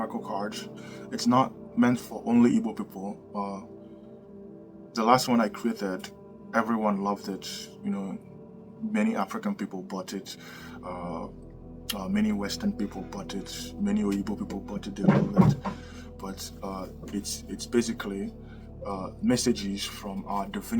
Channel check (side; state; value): both; identical; correlation 1.00